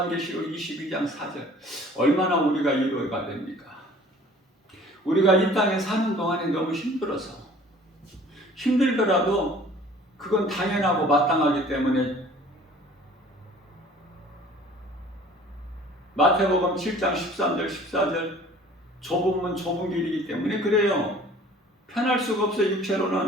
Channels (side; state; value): both; normal; correlation 0.50